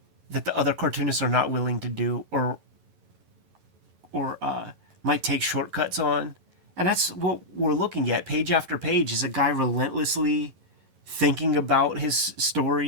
that the other cartoonists are not willing to do or might take shortcuts on. And that's what we're looking at. Page after page is a guy relentlessly thinking about his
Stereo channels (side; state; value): left; late; 11 ms